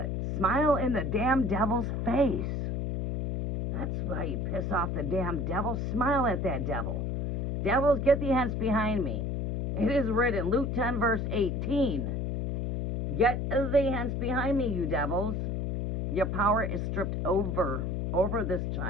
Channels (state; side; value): noise; left; hum, 1 dB below the sound